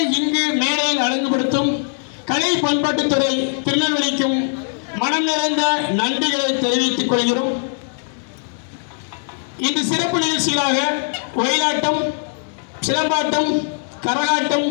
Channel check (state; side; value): silent; right; 66 dB below the other